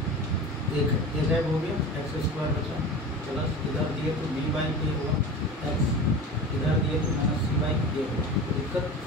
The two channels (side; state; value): both; normal; correlation 0.33